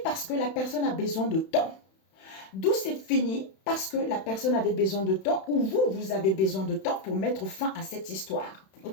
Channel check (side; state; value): right; late; 31 ms